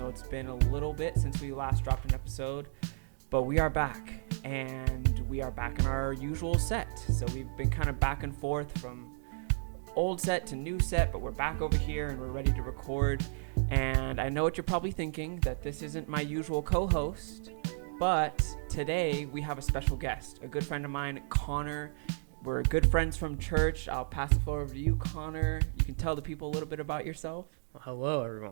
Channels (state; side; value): silent; left; digital silence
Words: it's been a little bit since we last dropped an episode, but we are back, and we are back in our usual set. So we've been kind of back and forth from old set to new set, but we're back over here and we're ready to record. And I know what you're probably thinking, that this isn't my usual co-host, but today we have a special guest, a good friend of mine, Connor. We're good friends from church. I'll pass the floor over to you, Connor. You can tell the people a little bit about yourself. Well, hello,